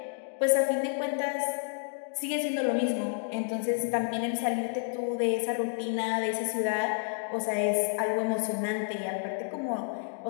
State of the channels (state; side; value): silent; right; digital silence